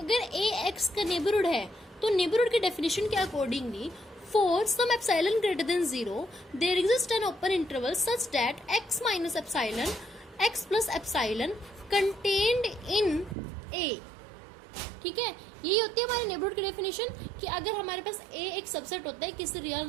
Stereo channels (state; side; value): drops out; left; at 13.4 s